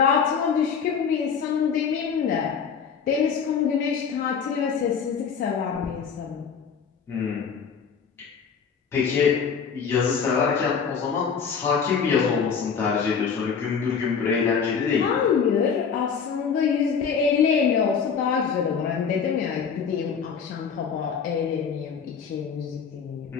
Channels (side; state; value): right; quieter; 6.5 dB